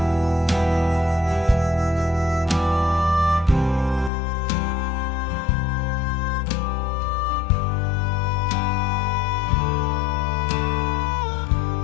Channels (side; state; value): right; drops out; at 4.1 s